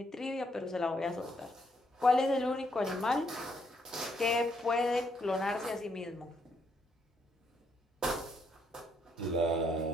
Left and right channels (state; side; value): normal; both; correlation 0.73